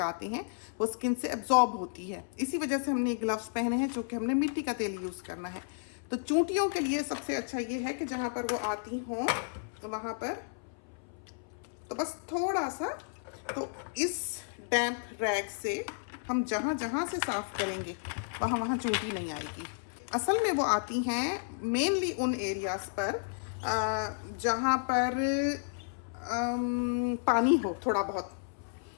हैं वो स्किन से एब्जॉर्ब होती है। इसी वजह से हमने ग्लव्स पहने हैं, जो कि हमने मिट्टी का तेल यूज़ करना है। तो चूंटियों के लिए सबसे अच्छा ये है कि जहाँ पर वो आती हों तो वहाँ पर तो बस थोड़ा सा, तो इस डैम्प रैग से हम जहाँ जहाँ से साफ़ करेंगे वहाँ वहाँ चूंटी नहीं आएगी। असल में वो आती हैं मेनली उन एरियाज़ पर जहाँ पर पानी हो थोड़ा बहुत,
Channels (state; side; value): silent; right; 56 dB below the other